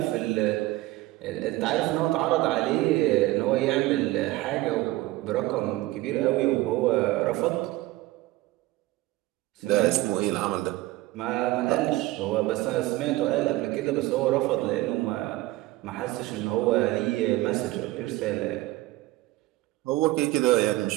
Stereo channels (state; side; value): quieter; left; 18.3 dB